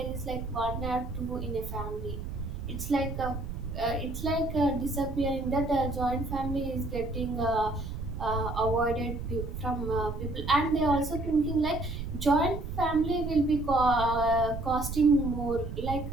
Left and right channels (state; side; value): noise; right; rumble, 6 dB below the sound